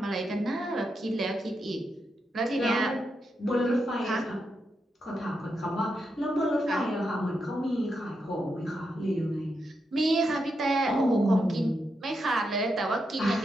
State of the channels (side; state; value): both; normal; correlation 0.84